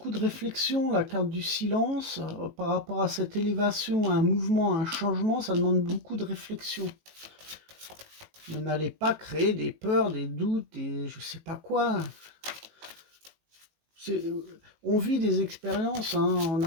de réflexion, la carte du silence, par rapport à cette élévation, à un mouvement, à un changement, ça demande beaucoup de réflexion. Mais n'allez pas créer des peurs, des doutes, des je sais pas quoi. On vit des expériences, hein,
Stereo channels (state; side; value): late; left; 18 ms